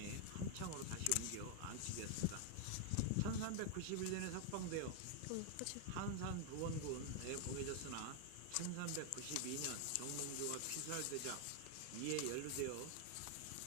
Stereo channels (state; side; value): different; both; correlation 0.00